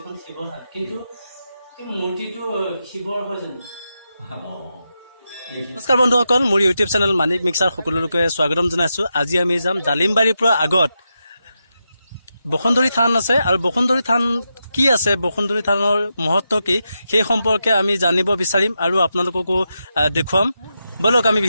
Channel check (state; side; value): inverted; both; correlation -0.87